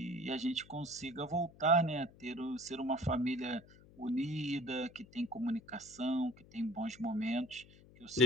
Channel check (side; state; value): left; noise; hum, 23 dB below the sound